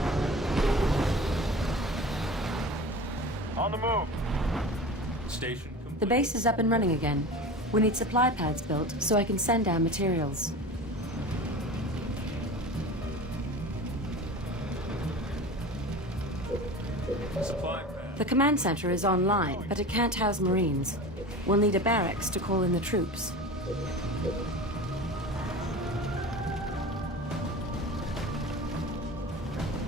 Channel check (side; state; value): both; normal; correlation 0.34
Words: On the move. Station complete. The base is up and running again. We need supply pads built so I can send down materials. Supply pad. The command center is online, but it can't house Marines. We'll need a barracks to call in the troops.